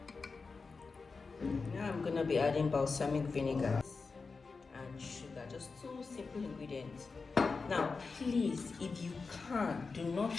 Now I'm gonna be adding balsamic vinegar and sugar, just 2 simple ingredients. Now please, if you can, do not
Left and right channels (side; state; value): right; quieter; 4.4 dB